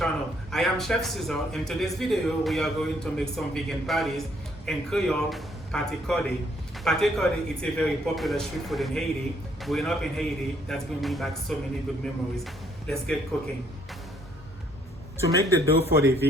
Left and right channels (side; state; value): both; normal; correlation 0.67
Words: I am Chef Cesar. In today's video, we are going to make some vegan patties in Creole, Pate Kòde. Pate Kòde is a very popular street food in Haiti. Growing up in Haiti, that's bringing me back so many good memories. Let's get cooking. To make the dough for the